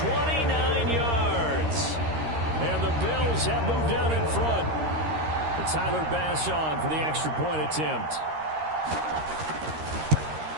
yards. And the Bills have moved down in front. And Tyler Bass on for the extra point attempt.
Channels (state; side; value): late; left; 13 ms